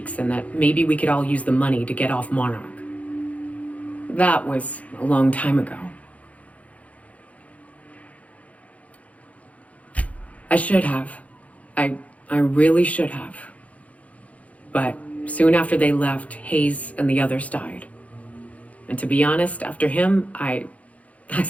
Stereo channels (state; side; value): late; right; 0.067 ms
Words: and that maybe we could all use the money to get off Monarch. That was a long time ago. I should have. I really should have. But soon after they left, Hayes and the others died. And to be honest, after him, I